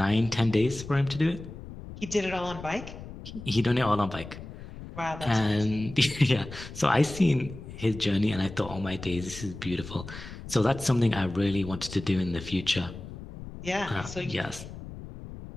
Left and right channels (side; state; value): left; noise; rumble, 13 dB below the sound